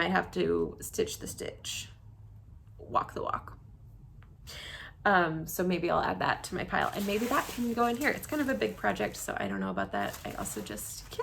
have to stitch the stitch, walk the walk. So maybe I'll add that to my pile, and maybe that can go in here. It's kind of a big project, so I don't know about that. I also just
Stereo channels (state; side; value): identical; both; correlation 1.00